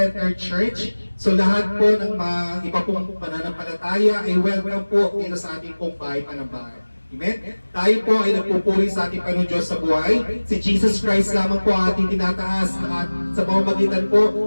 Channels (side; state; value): both; inverted; correlation -1.00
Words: church. So lahat po ng mga iba pong pananampalataya ay welcome po dito sa ating pong bahay panambahay. Amen? Tayo po ay nagpupuri sa ating Panginoon Diyos sa buhay. Si Jesus Christ lamang po ang ating tinataas sa pamamagitan po